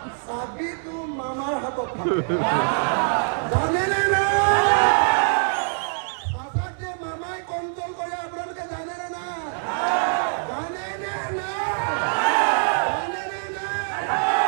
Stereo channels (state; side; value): silent; left; 62 dB below the other